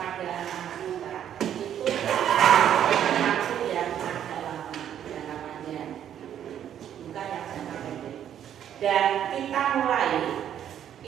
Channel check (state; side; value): quieter; left; 10.0 dB